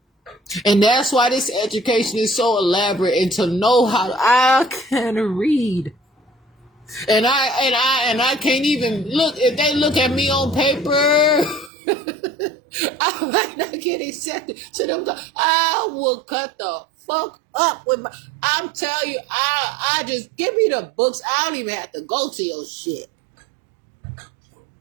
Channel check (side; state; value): left; drops out; at 11.7 s